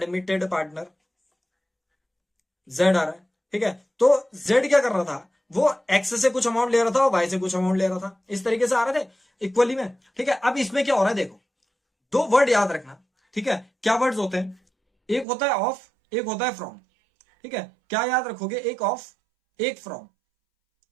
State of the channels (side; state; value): left; drops out; at 15.2 s